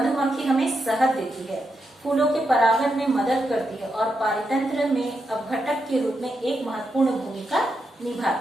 हमें शहद देती है, फूलों के परागण में मदद करती है और पारितंत्र में अपघटक के रूप में एक महत्वपूर्ण भूमिका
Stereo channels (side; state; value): both; normal; correlation 0.84